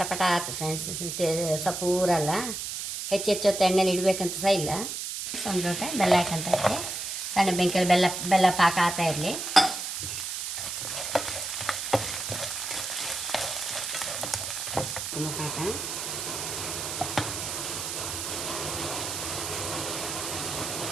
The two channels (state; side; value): noise; right; hiss, 4 dB below the sound